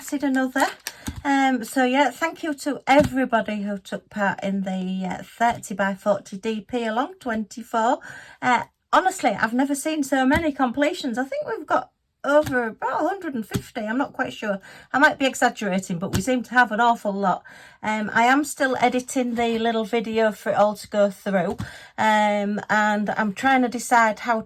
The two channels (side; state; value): both; identical; correlation 1.00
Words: another. So yeah, thank you to everybody who took part in the 30 by 40 DP along 24. Honestly, I've never seen so many completions. I think we've got over about 150. I'm not quite sure. I might be exaggerating, but we seem to have an awful lot. I am still editing the little video for it all to go through. And I'm trying to decide how